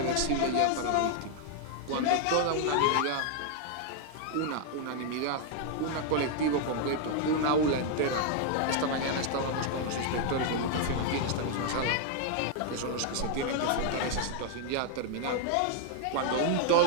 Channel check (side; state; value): both; different; correlation 0.00